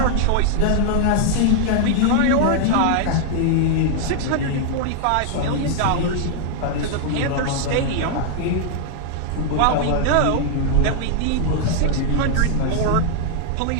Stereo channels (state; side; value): different; both; correlation 0.00